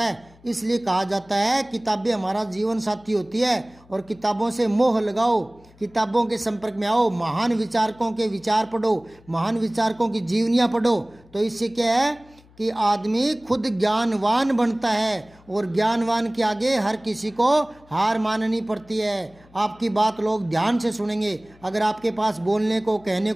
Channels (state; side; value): noise; left; hum, 27 dB below the sound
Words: है। इसलिए कहा जाता है किताबें हमारा जीवन साथी होती है, और किताबों से मोह लगाओ, किताबों के संपर्क में आओ, महान विचारकों के विचार पढ़ो, महान विचारकों की जीवनियाँ पढ़ो। तो इससे क्या है कि आदमी खुद ज्ञानवान बनता है, और ज्ञानवान के आगे हर किसी को हार माननी पड़ती है। आपकी बात लोग ध्यान से सुनेंगे अगर आपके पास बोलने को कहने